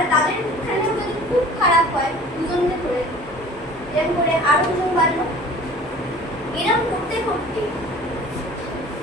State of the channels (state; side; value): normal; both; correlation 0.46